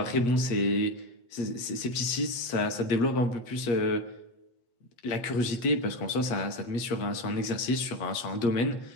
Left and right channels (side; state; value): right; late; 8.5 ms